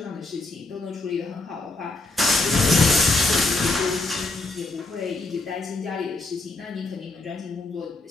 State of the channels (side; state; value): right; quieter; 3.2 dB